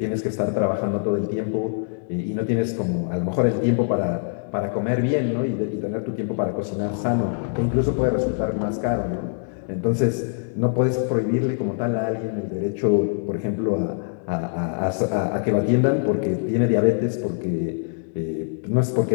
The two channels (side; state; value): right; silent; digital silence